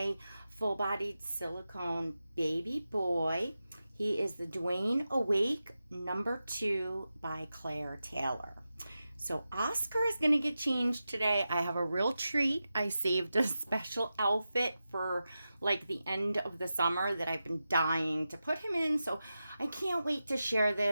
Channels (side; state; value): both; inverted; correlation -0.92